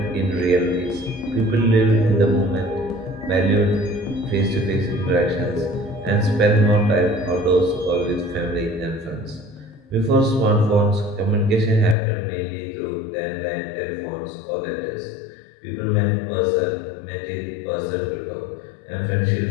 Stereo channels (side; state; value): right; drops out; at 12.0 s